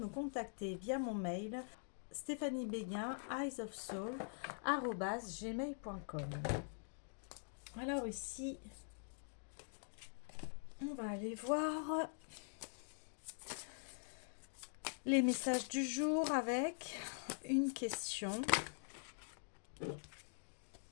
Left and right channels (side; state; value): right; silent; digital silence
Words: contacter via mon mail Stéphanie Béguin, eyesofsoul@gmail.com. Alors ici, on va aller voir les messages du jour avec une question.